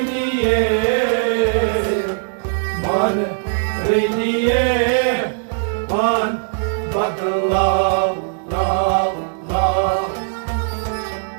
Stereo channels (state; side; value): silent; left; digital silence